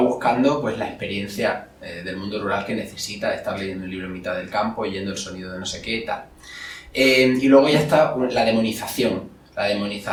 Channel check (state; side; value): identical; both; correlation 1.00